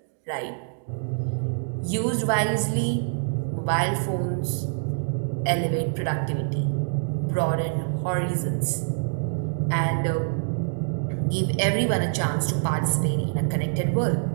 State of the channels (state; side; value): silent; left; digital silence